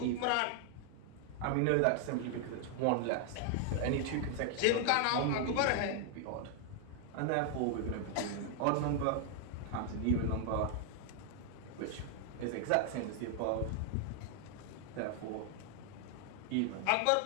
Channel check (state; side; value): different; both; correlation 0.00